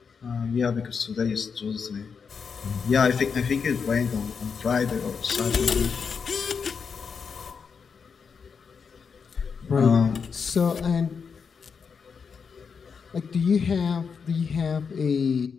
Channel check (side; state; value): right; quieter; 5.9 dB